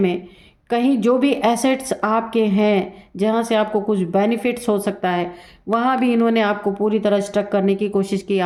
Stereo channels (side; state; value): both; identical; correlation 1.00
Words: कहीं जो भी एसेट्स आपके हैं जहाँ से आपको कुछ बेनिफिट्स हो सकता है, वहाँ भी इन्होंने आपको पूरी तरह स्टक करने की कोशिश की,